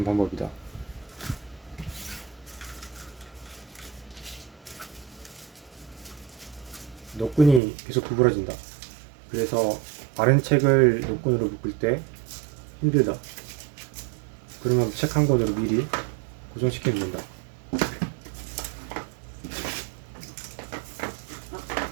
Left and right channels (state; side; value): drops out; left; at 7.6 s